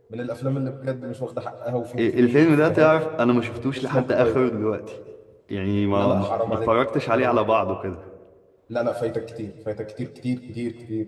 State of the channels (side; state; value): both; identical; correlation 1.00